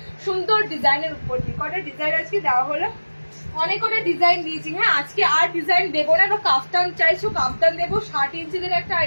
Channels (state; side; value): inverted; both; correlation -1.00